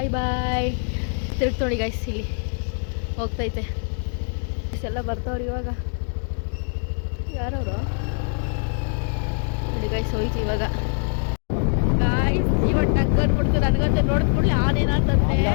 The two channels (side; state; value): right; silent; 63 dB below the other